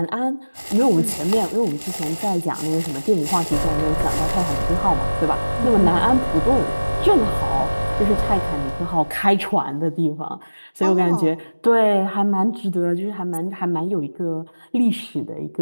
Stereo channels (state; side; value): inverted; both; correlation -1.00